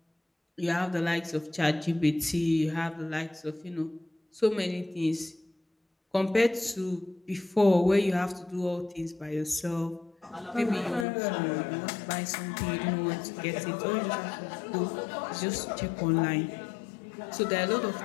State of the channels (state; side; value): drops out; right; at 11.1 s